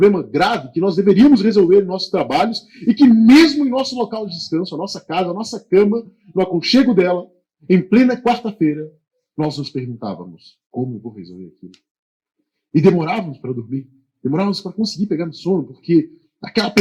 grave que nós deveríamos resolver em nossos trabalhos e que mesmo em nosso local de descanso, a nossa casa, a nossa cama, no aconchego dela, em plena quarta-feira, nós nos perguntávamos: como eu vou resolver aquilo? E demorávamos para dormir, demorávamos para conseguir pegar no sono, porque aquela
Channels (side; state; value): both; identical; correlation 1.00